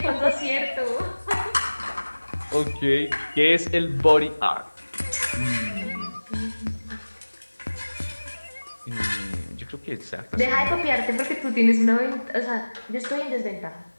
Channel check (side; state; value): both; inverted; correlation -1.00